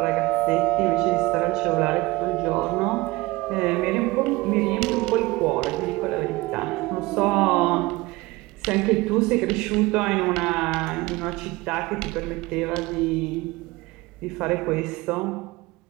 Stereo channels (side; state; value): left; quieter; 21.4 dB